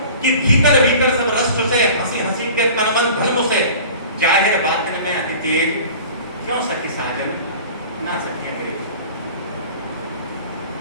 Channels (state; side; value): inverted; both; correlation -0.42